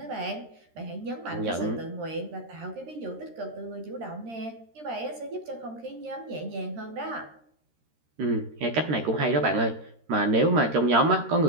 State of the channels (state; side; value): late; left; 13 ms